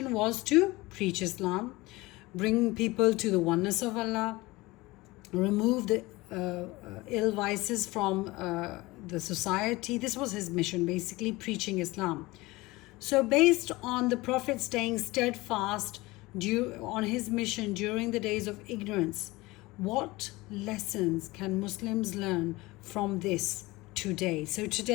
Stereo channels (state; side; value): quieter; right; 21.1 dB